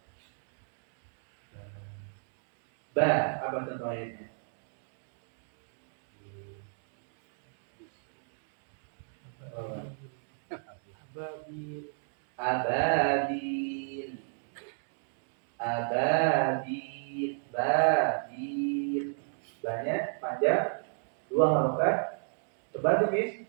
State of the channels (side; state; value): left; silent; digital silence